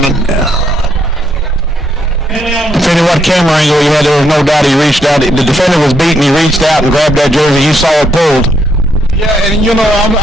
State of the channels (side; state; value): both; normal; correlation 0.75